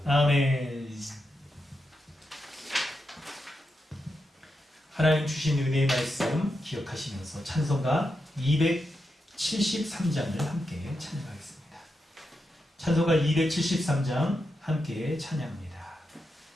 아멘. 하나님 주신 은혜의 말씀 기억하시면서 찬송가 273장을 함께 찬양하겠습니다. 찬송가 273장 함께 찬양합니다.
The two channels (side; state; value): both; normal; correlation 0.86